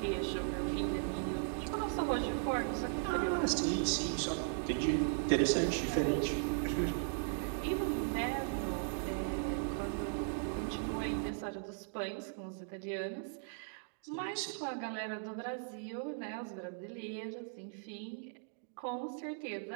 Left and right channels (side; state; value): left; silent; digital silence